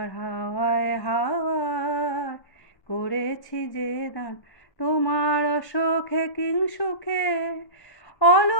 হাওয়ায় হাওয়ায় করেছি যে দান। তোমার অসুখে কিং সুখে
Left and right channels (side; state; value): right; late; 1.1 ms